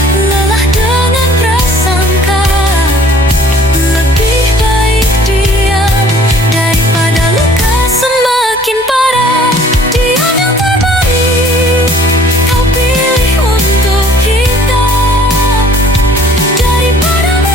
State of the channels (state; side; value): normal; both; correlation 0.54